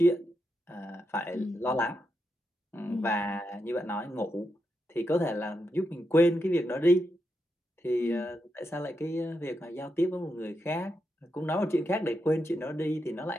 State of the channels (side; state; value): both; normal; correlation 0.84